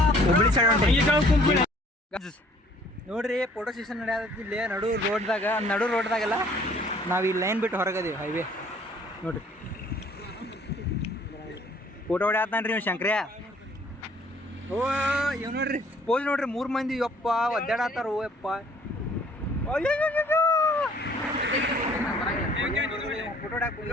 ಹುಬ್ಳಿ ಸೈಡ್ ಹೊಂಟೇವಿ ನೋಡ್ರಿ. ಫೋಟೋ ಸೆಷನ್ ನಡೆಯತ್ತಿ ಇಲ್ಲಿ ನಡು ರೋಡ್ದಾಗೆಲ್ಲ. ನಾವು ಈ ಲೈನ್ ಬಿಟ್ಟು ಹೊರಗದೀವಿ, ಹೈವೇ ನೋಡ್ರಿ. ಫೋಟೋ ಹೊಡ್ಯಾತಾನ್ರಿ ನೀವು ಶಂಕ್ರ್ಯ. ಓ ಇವ್ ನೋಡ್ರಿ ಪೋಸ್ ನೋಡ್ರಿ, 3 ಮಂದಿ ಯಪ್ಪ ಒದ್ದಾಡತ್ತಾರ. ಓ ಯಪ್ಪ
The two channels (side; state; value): both; normal; correlation 0.57